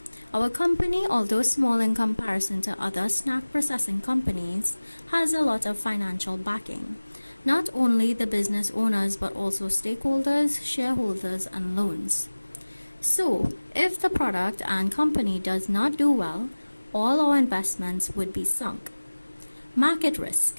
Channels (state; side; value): inverted; both; correlation -1.00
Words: Our company, although small in comparison to other snack processing companies, has a lot of financial backing. Not only the business owners, but also stakeholders, shareholders, and loans. So, if the product and company does not do well, all our investments would be sunk. Market